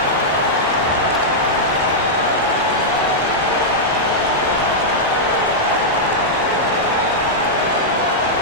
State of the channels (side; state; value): both; normal; correlation -0.07